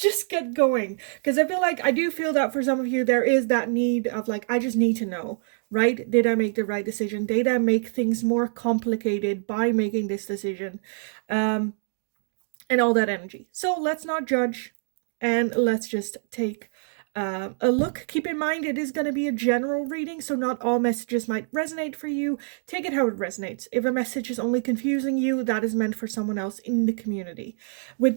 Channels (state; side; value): silent; left; digital silence